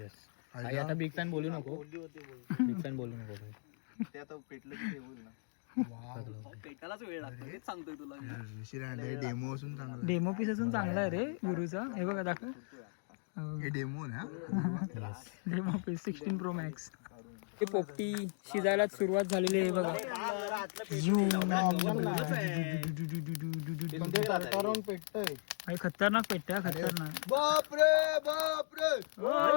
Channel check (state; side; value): silent; right; 53 dB below the other